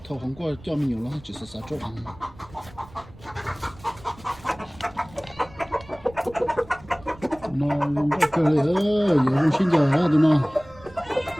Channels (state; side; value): noise; right; rumble, 21 dB below the sound